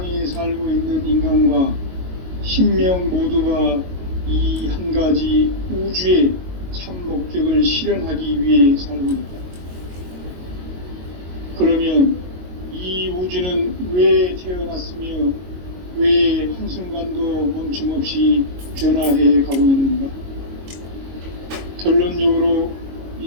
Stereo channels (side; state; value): left; late; 22 ms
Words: 살고 있는 인간과 신명 모두가 이 한 가지 우주의 참 목적을 실현하기 위해 살고 있다. 그러면 이 우주는 왜 태어났으며 왜 한순간도 멈춤없이 변화해 가고 있는가? 결론적으로